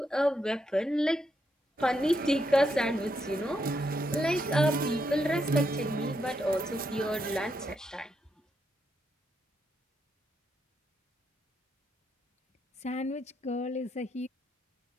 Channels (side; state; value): both; normal; correlation 0.80